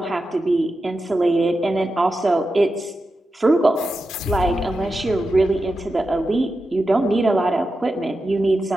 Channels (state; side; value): normal; both; correlation 0.90